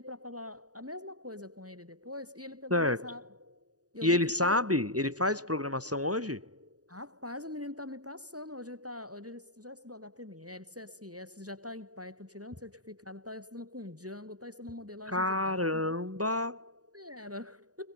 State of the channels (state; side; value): late; left; 0.67 ms